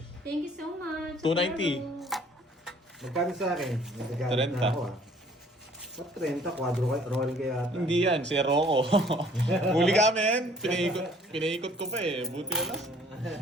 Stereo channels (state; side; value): normal; both; correlation 0.57